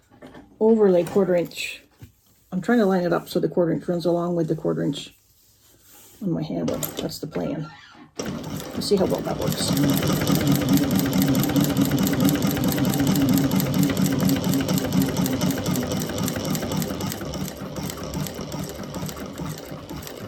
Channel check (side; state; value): both; identical; correlation 1.00